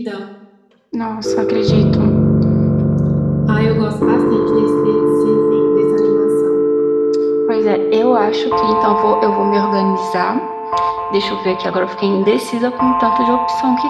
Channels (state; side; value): identical; both; correlation 1.00